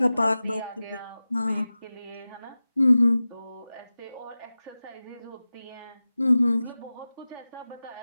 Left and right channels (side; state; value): both; inverted; correlation -0.96